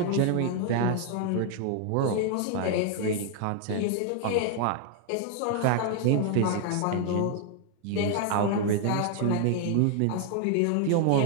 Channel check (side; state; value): both; different; correlation 0.00